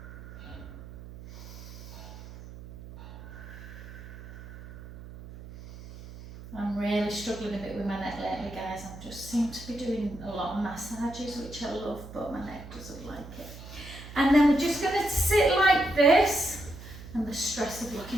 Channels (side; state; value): right; noise; hum, 14 dB below the sound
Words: I'm really struggling a bit with my neck lately, guys. I just seem to be doing a lot of massages, which I love, but my neck doesn't like it. And then we're just going to sit like this. And the stress of